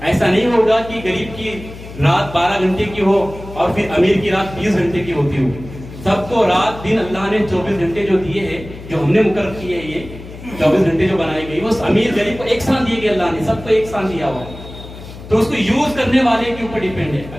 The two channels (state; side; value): noise; left; hum, 14 dB below the sound